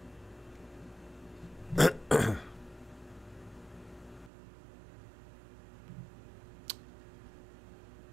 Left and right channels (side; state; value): left; drops out; at 4.3 s